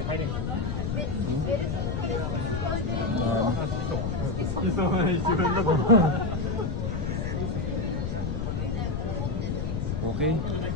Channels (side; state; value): left; noise; rumble, 1 dB below the sound